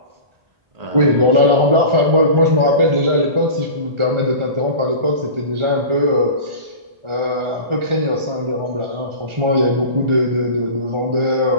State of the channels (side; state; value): left; late; 1.4 ms